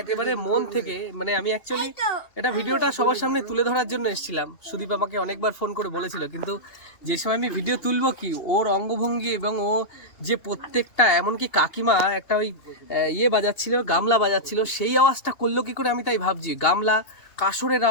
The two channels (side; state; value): right; late; 2.8 ms